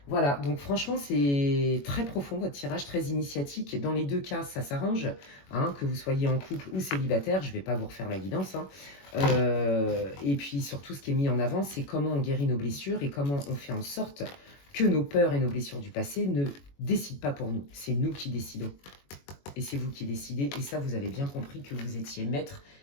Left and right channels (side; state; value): right; late; 21 ms